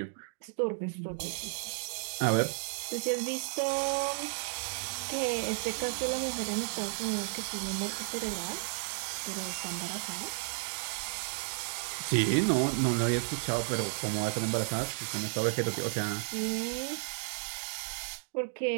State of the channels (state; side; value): silent; left; digital silence